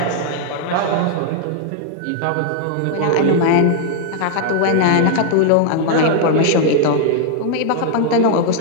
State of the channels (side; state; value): both; different; correlation 0.00